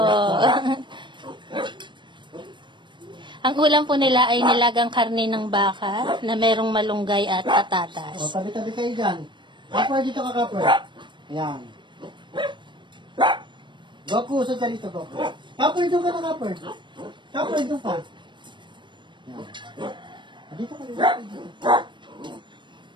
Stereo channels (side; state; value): left; late; 0.23 ms